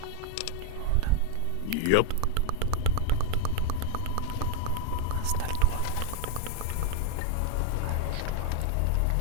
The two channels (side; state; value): both; different; correlation 0.01